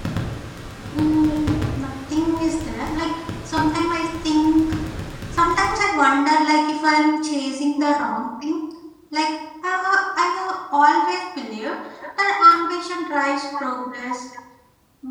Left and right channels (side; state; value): both; identical; correlation 1.00